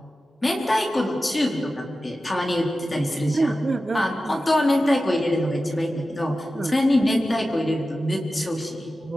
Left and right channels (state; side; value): normal; both; correlation 0.94